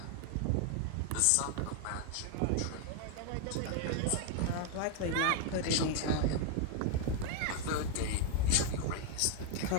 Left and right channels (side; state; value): both; different; correlation 0.00